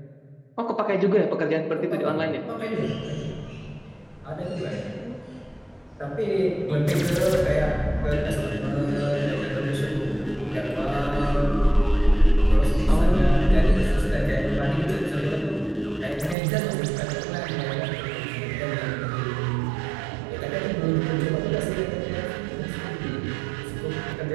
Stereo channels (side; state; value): left; drops out; at 16.4 s